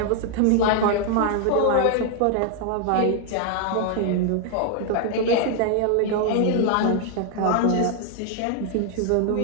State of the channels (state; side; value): different; both; correlation 0.00